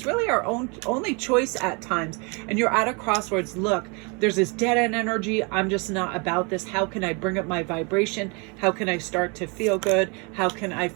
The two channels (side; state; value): left; quieter; 31.7 dB